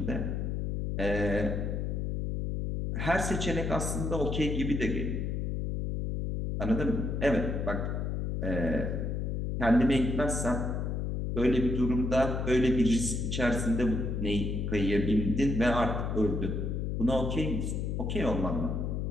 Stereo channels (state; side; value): noise; left; hum, 1 dB below the sound